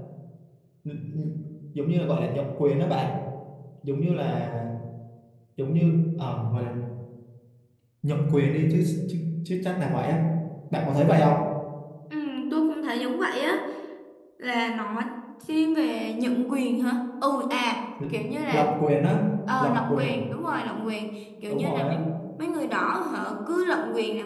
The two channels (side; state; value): both; identical; correlation 1.00